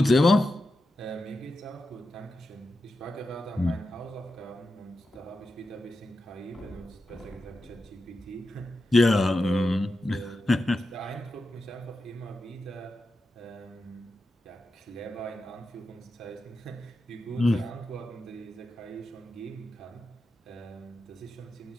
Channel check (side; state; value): both; normal; correlation 0.89